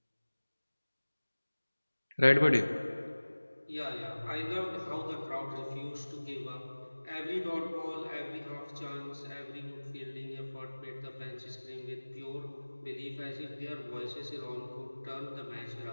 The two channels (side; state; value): both; inverted; correlation -1.00